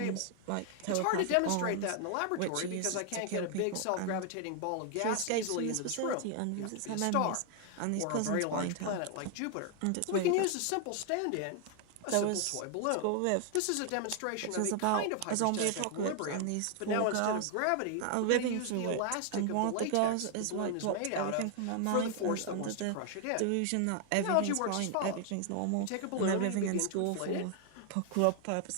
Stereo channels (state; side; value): different; both; correlation 0.00